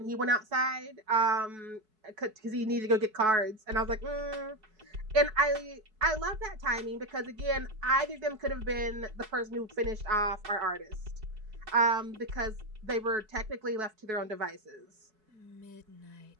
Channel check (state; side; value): late; left; 4.7 ms